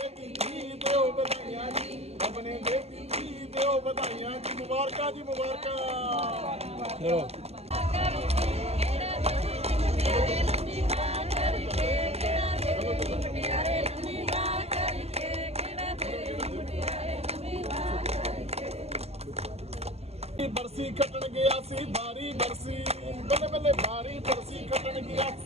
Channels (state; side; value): late; left; 0.30 ms